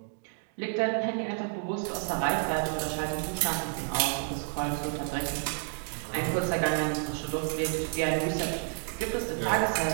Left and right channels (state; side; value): silent; left; 58 dB below the other